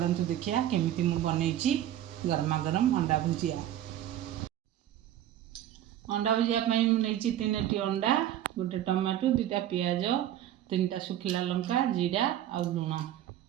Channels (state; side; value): quieter; left; 11.9 dB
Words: देखिया केमिति मु बनई गरमा गरम अंडा भुजिया। अंडा भुजिया नहीं 3टी अंडा, गोटे टमाटो, 2टा पियाज, 3टा सुखिला लंका, जीरा आ लुण।